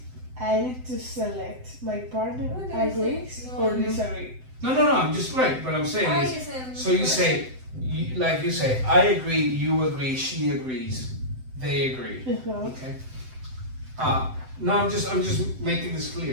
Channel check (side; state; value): left; late; 7.8 ms